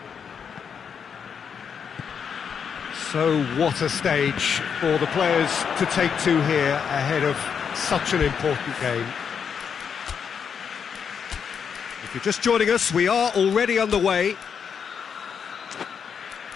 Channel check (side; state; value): right; quieter; 7.0 dB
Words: So what a stage for the players to take to here ahead of such an important game. If you're just joining us, we are already underway.